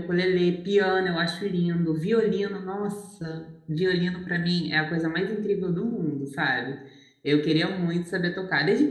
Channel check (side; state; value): both; identical; correlation 1.00